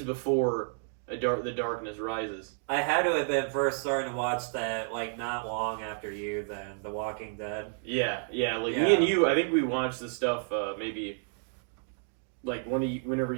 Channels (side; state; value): left; silent; 57 dB below the other